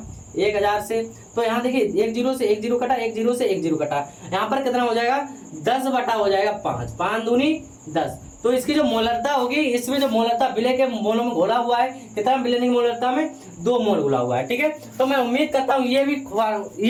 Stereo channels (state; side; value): identical; both; correlation 1.00